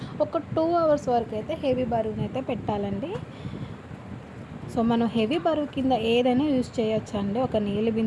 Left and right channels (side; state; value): both; identical; correlation 1.00